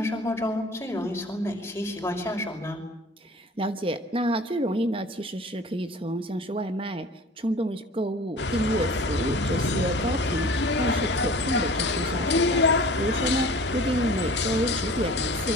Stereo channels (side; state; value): both; normal; correlation 0.43